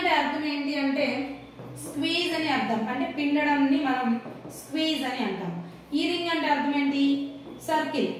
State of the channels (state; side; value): identical; both; correlation 1.00